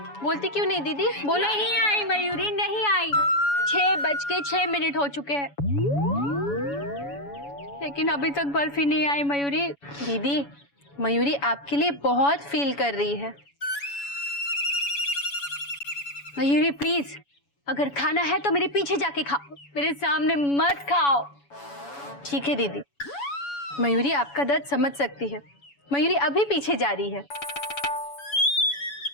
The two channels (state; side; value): late; right; 7.1 ms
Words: बोलती क्यों नहीं दीदी? बोलो। नहीं आई मयूरी, नहीं आई। 6:06 हो चुके हैं, लेकिन अभी तक बर्फी नहीं आई मयूरी। दीदी, मयूरी आपके लिए बहुत फील कर रही है। मयूरी प्लीज, अगर खाना है तो मेरे पीछे जाके खाओ, मेरे सामने मत खाओ। ठीक है दीदी, मयूरी आपका दर्द समझ सकती है। मयूरी अभी पीछे जा रही है।